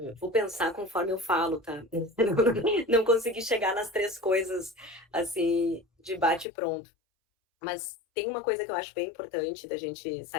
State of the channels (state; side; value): drops out; right; at 6.5 s